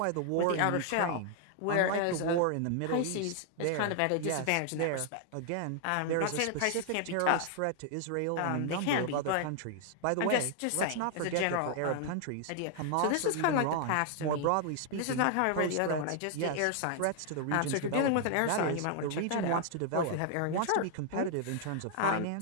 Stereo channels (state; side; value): different; both; correlation 0.00